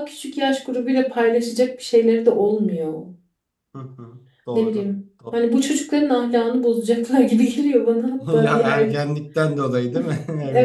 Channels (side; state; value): both; identical; correlation 1.00